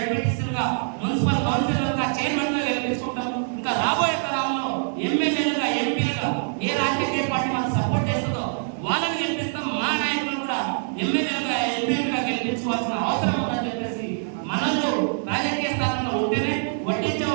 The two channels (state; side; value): silent; left; digital silence